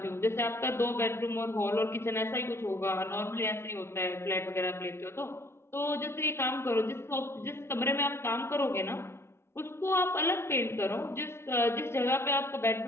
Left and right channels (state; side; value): late; right; 0.12 ms